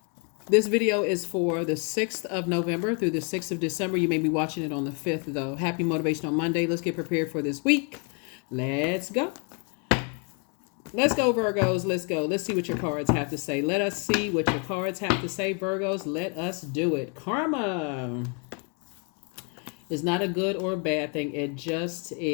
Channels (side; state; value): right; quieter; 37.2 dB